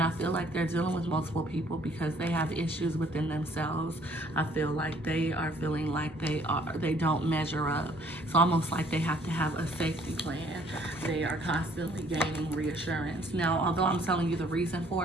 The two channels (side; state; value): both; normal; correlation 0.60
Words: I feel like they're dealing with multiple people because they have issues within themselves. I feel like they are feeling like they don't measure up. It's almost like they have to have a safety plan. They are constantly gaining reassurance. Now, although I'm telling you the reason